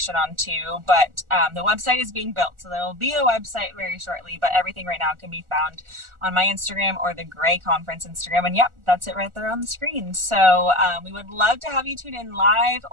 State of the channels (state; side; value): late; left; 1.4 ms